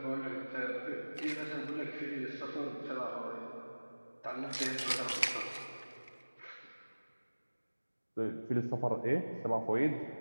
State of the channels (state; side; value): inverted; both; correlation -1.00